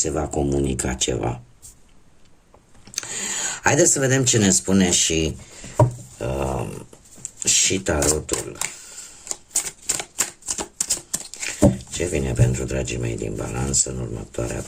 va comunica ceva. Haideți să vedem ce ne spune și tarotul. Ce vine pentru dragii mei din Balanță în următoarea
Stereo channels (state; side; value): identical; both; correlation 1.00